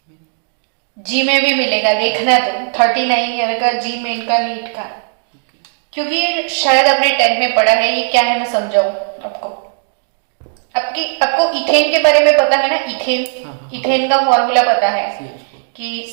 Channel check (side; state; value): left; silent; digital silence